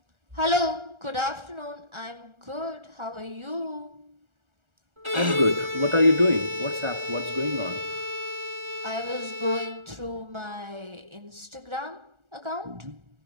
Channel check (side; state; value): left; late; 1.4 ms